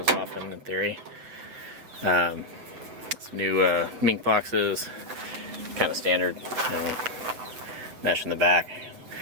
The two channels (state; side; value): late; left; 7.5 ms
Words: often in theory. Some new mink boxes, kind of standard, mesh in the back.